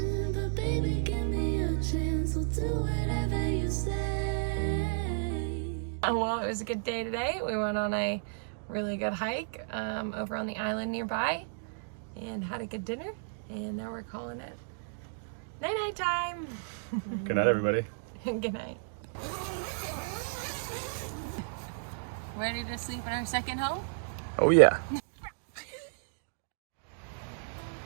but baby, give me a chance. We'll do whatever you say. Well, it was a good day today. We went on a really good hike over on the island nearby and had a good dinner. And now we're calling it night-night time. Good night, everybody. Good night. Ready to sleep in our second home? Oh yeah.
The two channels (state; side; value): silent; left; digital silence